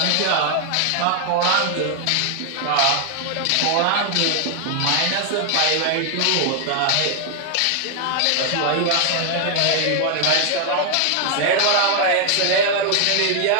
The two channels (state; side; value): different; both; correlation 0.00